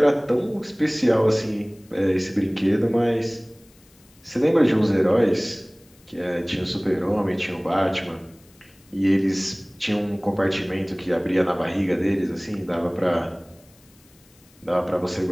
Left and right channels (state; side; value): noise; left; hiss, 29 dB below the sound